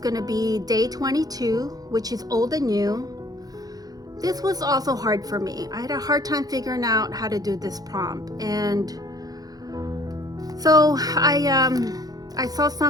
to be day 22, which is old and new. This was also hard for me. I had a hard time figuring out how to do this prompt. And so I saw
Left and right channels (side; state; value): left; late; 0.18 ms